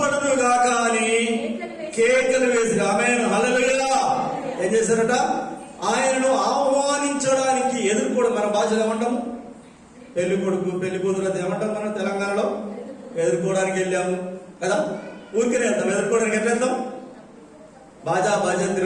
గాక అని కేకలు వేసి ఆమేన్ హల్లెలూయా ఏం చేశారట? ఆయనను ఆహ్వానించడానికి ఎదుర్కోవడం. మన భాషలో ఏమంటాము? పెళ్లి కొడుకు పెళ్లి కూతురు అది ఏమంటాం మనం తెలంగాణలో? ఎదుర్కోవడానికి వెళ్ళాము కదా. ఊరికనే వెళ్తాం. ఎదుర్కోవడానికి ఎట్లా వెళ్తాం? బాజా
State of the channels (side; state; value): both; identical; correlation 1.00